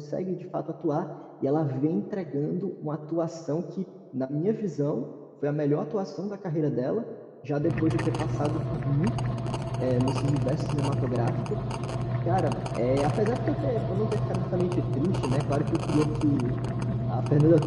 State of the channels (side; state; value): both; identical; correlation 1.00